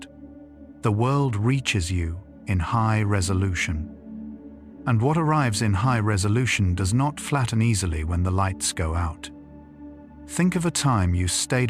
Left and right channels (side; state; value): both; identical; correlation 1.00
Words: The world reaches you in high resolution. And what arrives in high resolution does not flatten easily when the lights go out. Think of a time you